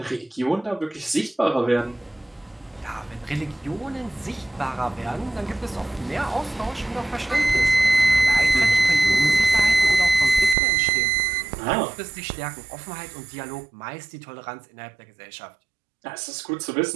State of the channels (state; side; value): drops out; left; at 10.6 s